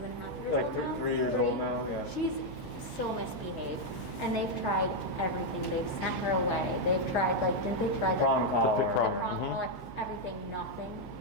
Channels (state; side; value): noise; right; hum, 17 dB below the sound